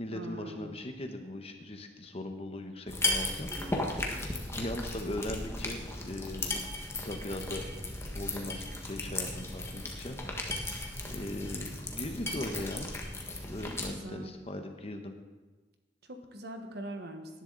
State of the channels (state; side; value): normal; both; correlation 0.40